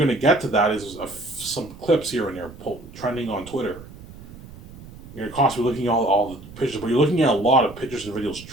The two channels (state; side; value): noise; right; rumble, 17 dB below the sound